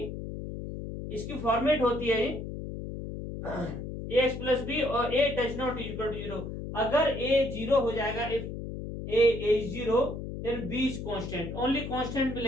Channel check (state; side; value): noise; left; hum, 7 dB below the sound